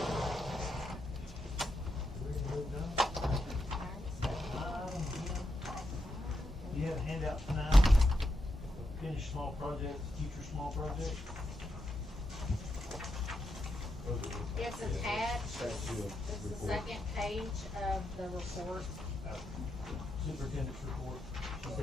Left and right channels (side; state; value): both; normal; correlation 0.84